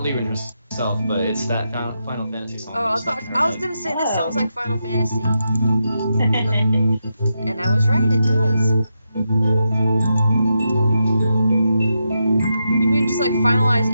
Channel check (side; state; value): both; inverted; correlation -0.85